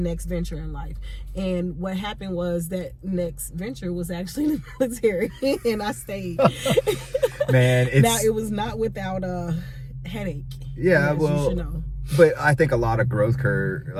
venture in life. And what happened was that next venture was actually the military, and I stayed. Man, now it was not without a headache. Yeah, well, you should know. But I think a lot of growth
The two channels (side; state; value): both; identical; correlation 1.00